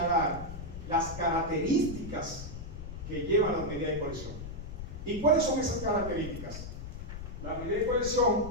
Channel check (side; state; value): left; noise; rumble, 9 dB below the sound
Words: las características que llevan las medidas de coerción. ¿Y cuáles son esas características? Las medidas de